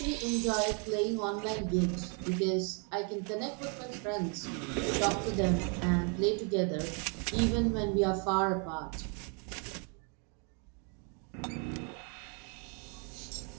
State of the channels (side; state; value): left; quieter; 37.1 dB